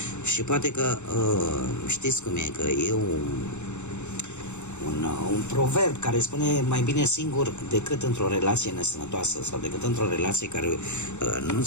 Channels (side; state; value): right; late; 0.83 ms